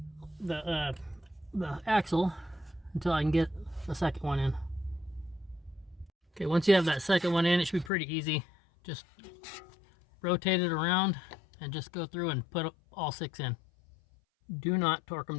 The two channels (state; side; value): drops out; right; at 7.9 s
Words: the axle until I can get the second one in. Okay, once you have that second one in, it should be pretty easy. Just rotate it around and just go through and put all 6 in. Do not torque